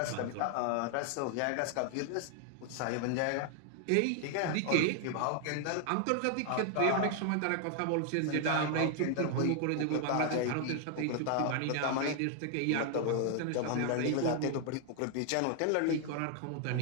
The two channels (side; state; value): both; different; correlation 0.00